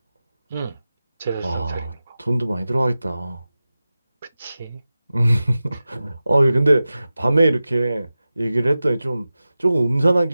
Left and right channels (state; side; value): inverted; both; correlation -0.95